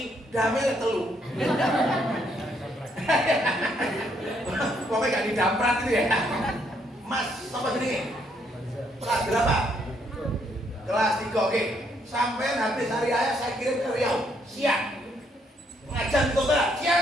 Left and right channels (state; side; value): normal; both; correlation 0.72